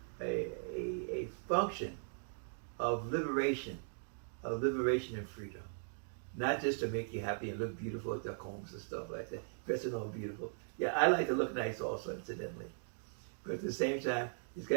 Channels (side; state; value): left; silent; digital silence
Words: function of liberation and freedom. Not just to make you happy and look beautiful at their combs and stuff like that, dressing all beautiful. Yeah, I like to look nice also, incidentally. But at the same time, it's